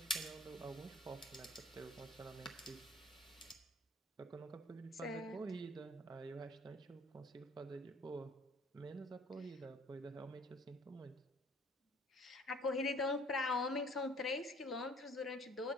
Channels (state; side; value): normal; both; correlation 0.54